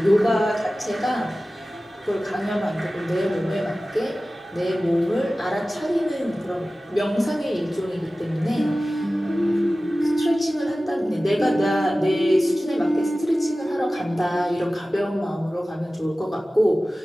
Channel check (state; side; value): normal; both; correlation 0.96